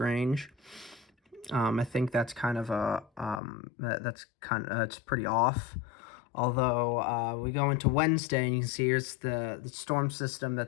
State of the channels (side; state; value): right; drops out; at 3.4 s